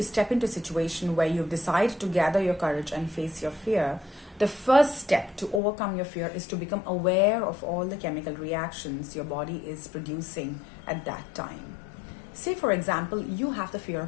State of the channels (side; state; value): right; drops out; at 5.6 s